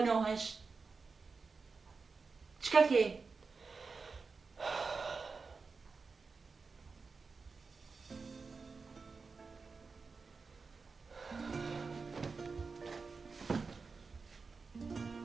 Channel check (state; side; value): quieter; left; 4.6 dB